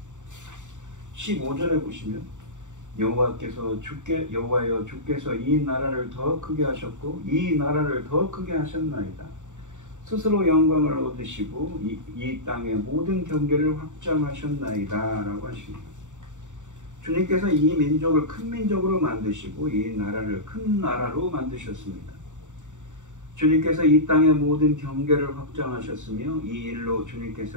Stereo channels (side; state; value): left; late; 0.85 ms